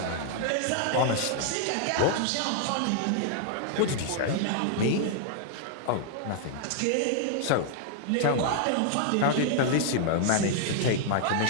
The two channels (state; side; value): different; both; correlation 0.00